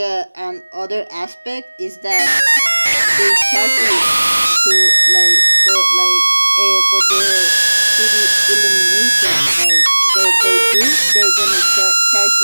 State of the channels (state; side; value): inverted; both; correlation -1.00